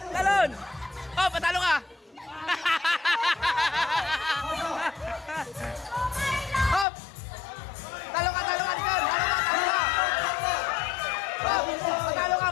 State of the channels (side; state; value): right; drops out; at 6.9 s